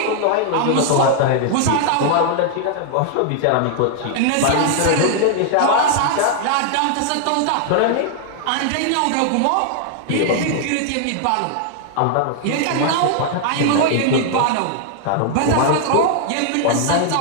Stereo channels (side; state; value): both; different; correlation 0.00